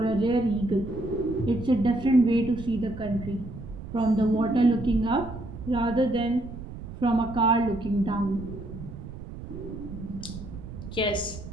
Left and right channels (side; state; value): right; noise; rumble, 11 dB below the sound